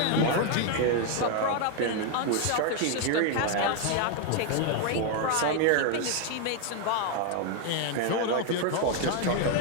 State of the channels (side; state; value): both; different; correlation 0.01